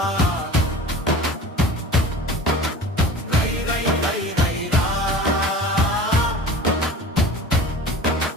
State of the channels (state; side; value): normal; both; correlation 0.39